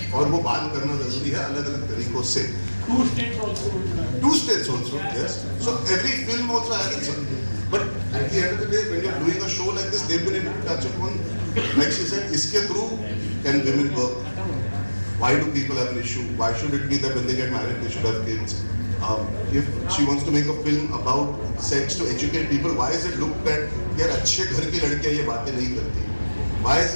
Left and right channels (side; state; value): both; inverted; correlation -1.00